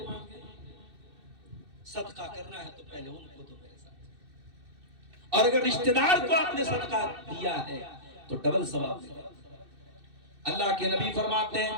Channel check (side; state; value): left; late; 2.6 ms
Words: صدقہ کرنا ہے تو پہلے ان کو دو میرے ساتھ، اور اگر رشتہ دار کو آپ نے صدقہ دیا ہے تو ڈبل ثواب ملے گا۔ اللہ کے نبی فرماتے